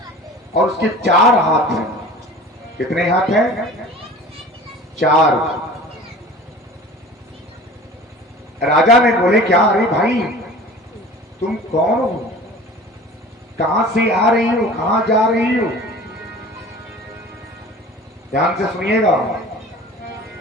और उसके 4 हाथ हैं। कितने हाथ हैं? 4। राजा ने बोले क्या, अरे भाई तुम कौन हो, कहां से आ रही हो, कहां जा रही हो? ध्यान से सुनिएगा।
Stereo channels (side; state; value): both; normal; correlation 0.41